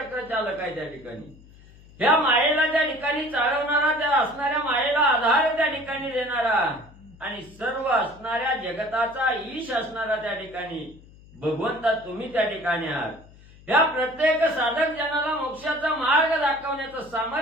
चालक आहे त्या ठिकाणी, ह्या मायेला त्या ठिकाणी चालवणारा, त्या असणाऱ्या मायेला आधार त्या ठिकाणी देणारा, आणि सर्व असणाऱ्या जगताचा ईश असणारा त्या ठिकाणी भगवंता तुम्ही त्या ठिकाणी आहात. या प्रत्येक साधक जनाला मोक्षाचा मार्ग दाखवण्याचं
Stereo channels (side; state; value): left; noise; hum, 23 dB below the sound